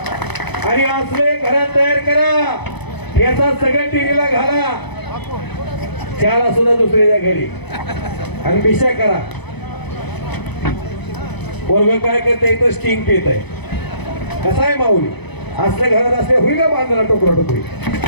आणि असले घरात तयार करा. याचा सगळ्या टीव्हीला घाला, त्याला सुद्धा दुसऱ्याच्या घरी आणि बिशा करा. पोरग काय करते इथं स्टिंग पित आहे. कसा आहे माऊली असल्या घरात असले होईल का बांधला टोकरा टोकरी.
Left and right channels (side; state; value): right; late; 0.99 ms